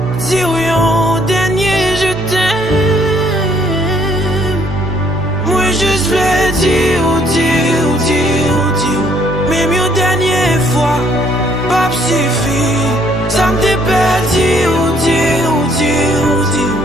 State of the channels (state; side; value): normal; both; correlation 0.65